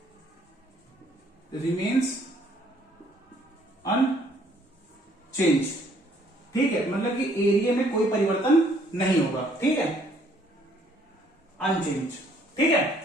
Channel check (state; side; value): normal; both; correlation 0.63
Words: रिमेन्स अनचेंज। ठीक है, मतलब कि एरिया में कोई परिवर्तन नहीं होगा। ठीक है, अनचेंज। ठीक है,